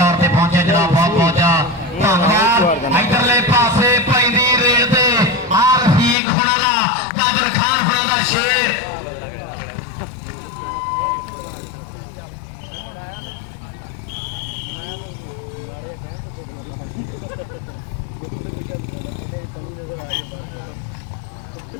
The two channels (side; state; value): right; drops out; at 6.2 s